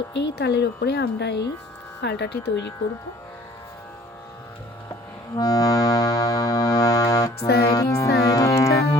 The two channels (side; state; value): both; normal; correlation 0.53